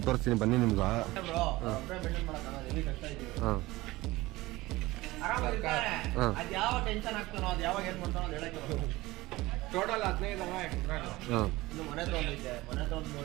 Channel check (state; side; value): quieter; left; 19.4 dB